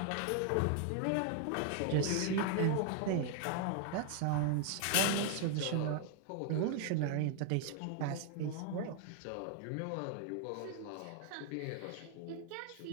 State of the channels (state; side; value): different; both; correlation 0.00